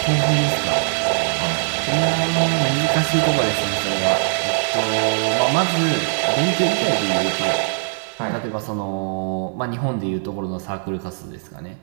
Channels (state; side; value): silent; left; digital silence